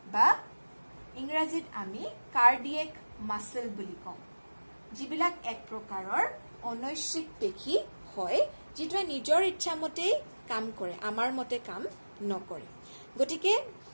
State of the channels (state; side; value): inverted; both; correlation -1.00